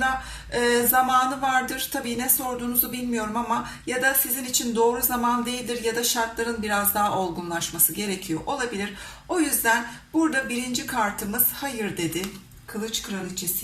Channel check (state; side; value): identical; both; correlation 1.00